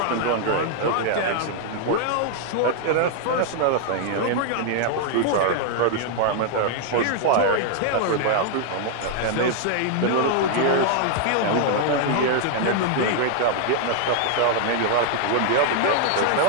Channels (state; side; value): different; both; correlation 0.00